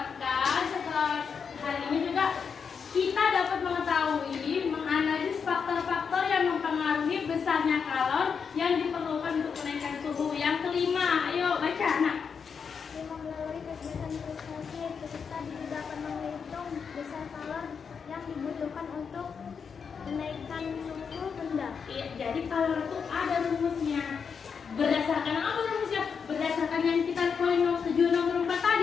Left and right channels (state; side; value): quieter; right; 6.2 dB